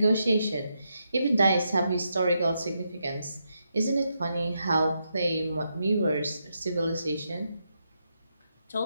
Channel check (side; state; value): both; inverted; correlation -0.83